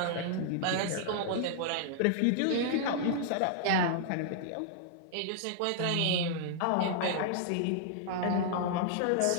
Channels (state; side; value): different; both; correlation -0.01